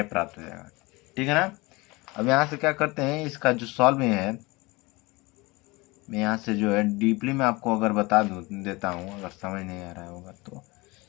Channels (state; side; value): quieter; right; 23.7 dB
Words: प्राप्त हो जाएगा। ठीक है ना, अब यहाँ से क्या करते हैं, इसका जो सॉल्व है मैं यहाँ से जो है डीपली में आपको अगर बता देता हूँ, अगर समझ नहीं आ रहा होगा तो,